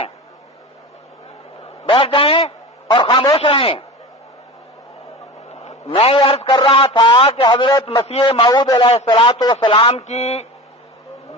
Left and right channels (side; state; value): both; normal; correlation 0.32